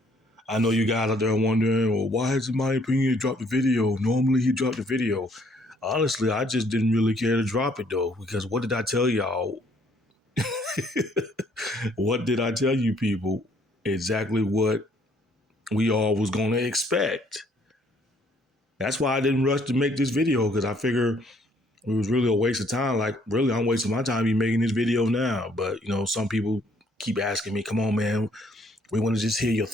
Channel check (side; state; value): both; normal; correlation 0.64